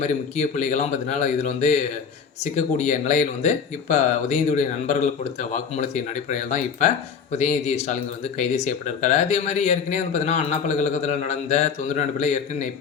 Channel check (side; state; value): right; quieter; 6.4 dB